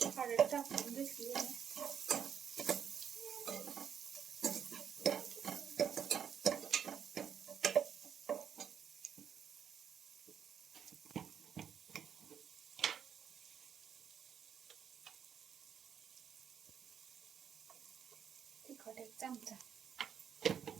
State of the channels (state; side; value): quieter; left; 8.0 dB